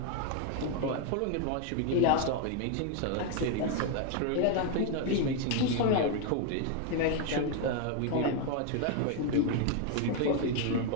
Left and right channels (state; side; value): different; both; correlation 0.01